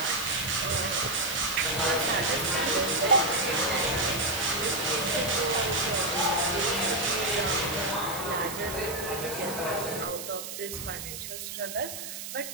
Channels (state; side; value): noise; right; hiss, 8 dB below the sound